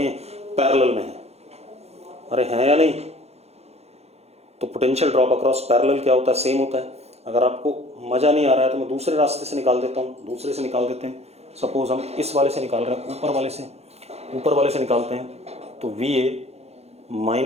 हैं, पैरेलल में हैं। अरे हैं या नहीं? तो पोटेंशियल ड्रॉप अक्रॉस पैरेलल क्या होता है, सेम होता है। अगर आपको मजा नहीं आ रहा है तो मैं दूसरे रास्ते से निकाल देता हूँ, दूसरे से निकाल देते हैं। सपोज हम इस वाले से निकाल रहे हैं, ऊपर वाले से निकालते हैं, तो V A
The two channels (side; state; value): left; late; 0.31 ms